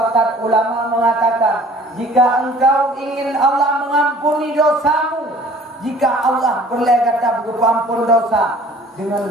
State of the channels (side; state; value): both; normal; correlation 0.50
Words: ulama mengatakan, jika engkau ingin Allah mengampuni dosamu, jika Allah berlegata pengampun dosa,